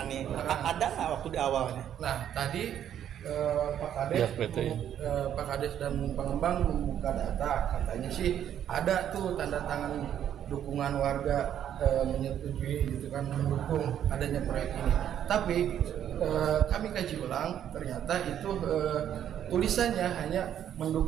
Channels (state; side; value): quieter; left; 10.1 dB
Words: Ada nggak waktu di awalnya? Nah tadi Pak Kades dan pengembang membuka data, katanya sih ada tuh tanda tangan dukungan warga menyetujui gitu kan, mendukung adanya proyek ini. Tapi kami kaji ulang, ternyata itu tulisannya hanya